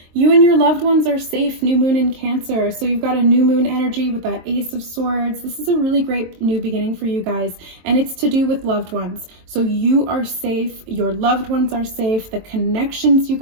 You and your loved ones are safe. New moon in Cancer. So you've got a new moon energy with that Ace of Swords. This is a really great new beginning for you guys. And it's to do with loved ones. So you are safe. Your loved ones are safe. The connections you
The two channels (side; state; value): left; late; 23 ms